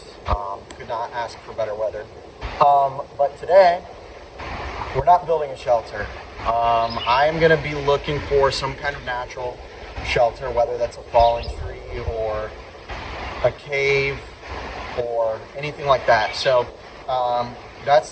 Could not ask for better weather. But today, we're not building a shelter. I'm going to be looking for some kind of natural shelter, whether that's a fallen tree or a cave or anything like that. So that's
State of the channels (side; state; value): both; identical; correlation 1.00